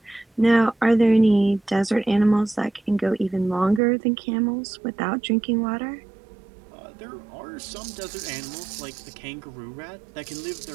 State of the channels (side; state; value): left; drops out; at 3.8 s